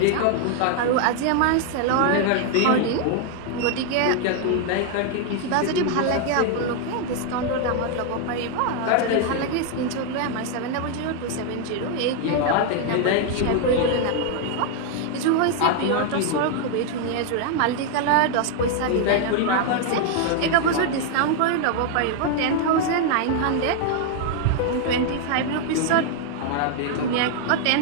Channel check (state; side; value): different; both; correlation 0.00